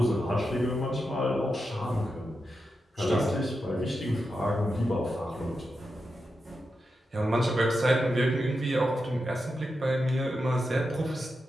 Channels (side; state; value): both; normal; correlation 0.88